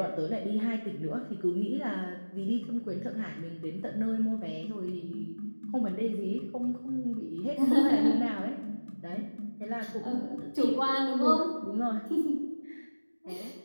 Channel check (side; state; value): both; inverted; correlation -1.00